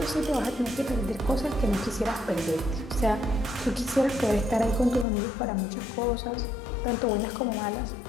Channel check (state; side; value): drops out; right; at 5.1 s